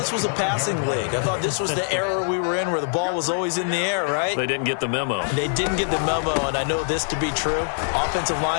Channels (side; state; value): right; silent; digital silence